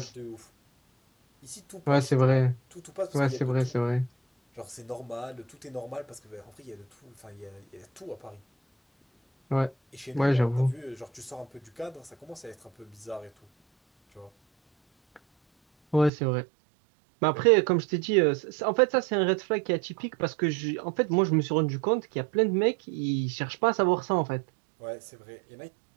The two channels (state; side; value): drops out; left; at 16.1 s